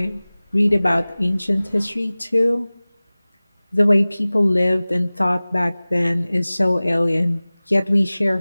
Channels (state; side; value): inverted; both; correlation -0.99